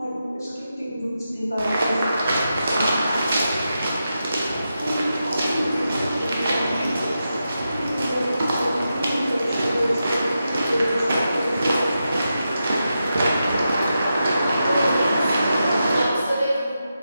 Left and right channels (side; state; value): both; inverted; correlation -0.88